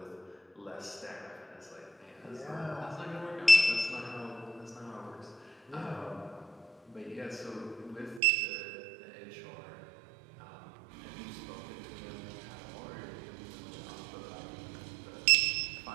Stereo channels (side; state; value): left; drops out; at 8.2 s